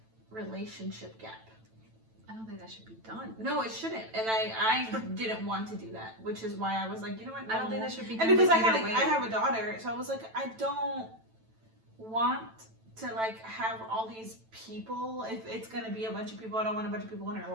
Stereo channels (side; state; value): left; late; 9.0 ms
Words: relationship gap. I don't think that should be done. No, it shouldn't. And I didn't want to do that, which is why I was like, you know what? I don't think no. that should be done. And because I either way. have a daughter, so I was like, I don't want to like have all these people. If it's gonna be a bunch of people, I don't want a bunch of people in her